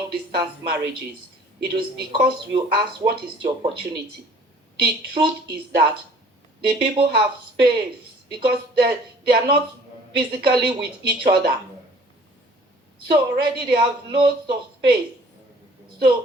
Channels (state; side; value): normal; both; correlation 0.53